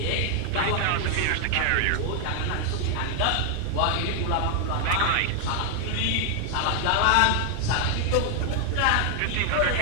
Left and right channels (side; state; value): both; different; correlation 0.00